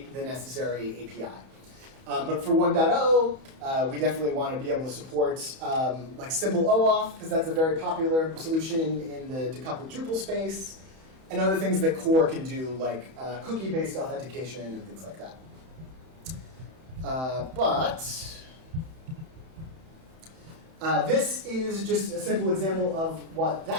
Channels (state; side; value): late; left; 31 ms